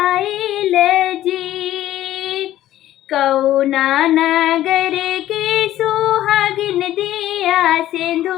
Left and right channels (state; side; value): quieter; right; 13.6 dB